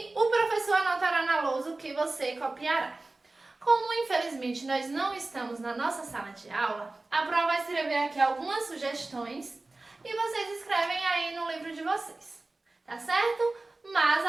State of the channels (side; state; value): left; quieter; 3.1 dB